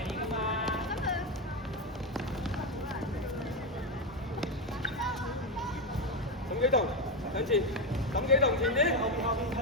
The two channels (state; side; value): normal; both; correlation 0.10